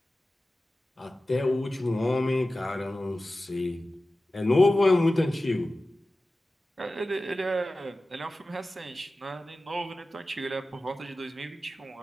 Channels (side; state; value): both; normal; correlation 0.95